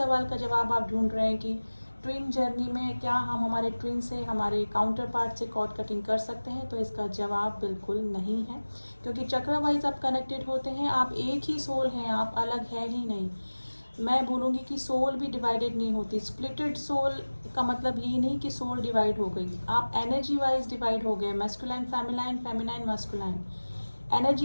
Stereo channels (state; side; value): inverted; both; correlation -1.00